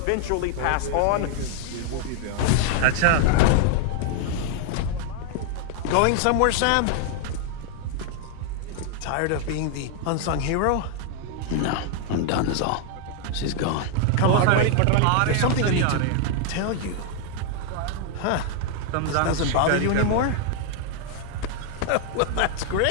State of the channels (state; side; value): different; both; correlation 0.00